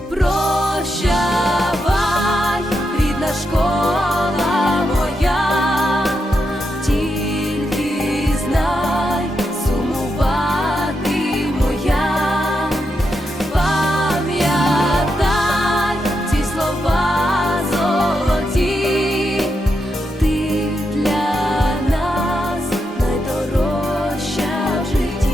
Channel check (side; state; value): both; normal; correlation 0.84